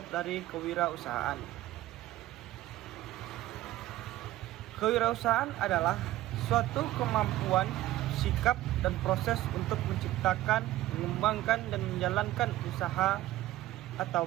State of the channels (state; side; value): quieter; left; 15.4 dB